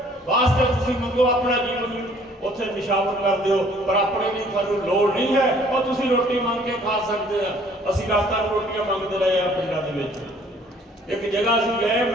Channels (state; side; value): normal; both; correlation 0.57